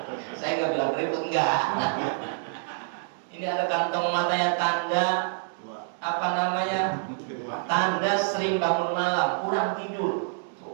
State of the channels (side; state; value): left; silent; digital silence